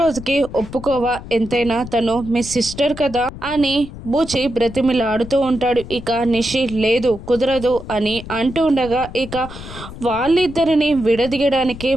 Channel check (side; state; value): left; noise; rumble, 13 dB below the sound